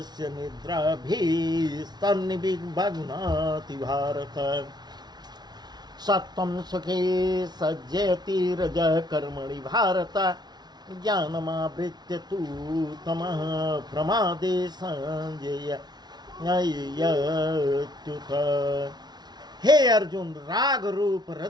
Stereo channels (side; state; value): left; late; 0.20 ms